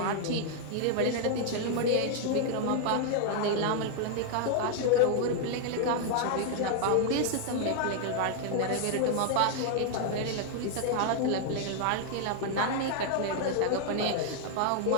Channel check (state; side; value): different; both; correlation 0.00